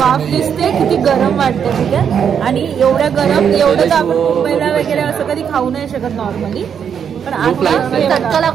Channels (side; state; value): left; quieter; 7.7 dB